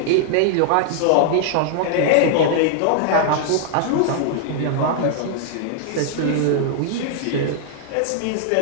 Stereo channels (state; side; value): different; both; correlation -0.01